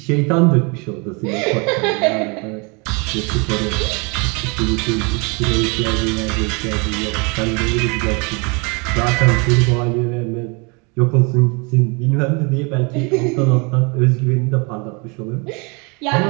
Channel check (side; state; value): left; quieter; 31.1 dB